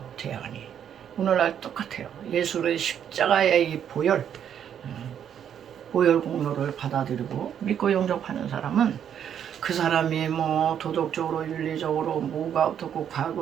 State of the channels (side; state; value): left; quieter; 9.0 dB